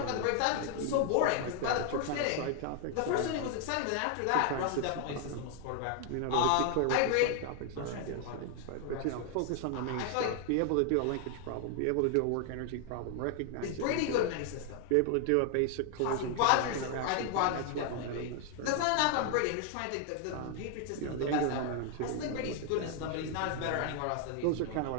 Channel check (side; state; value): both; different; correlation 0.00